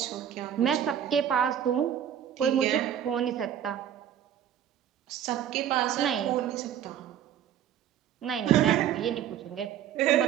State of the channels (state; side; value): quieter; left; 10.0 dB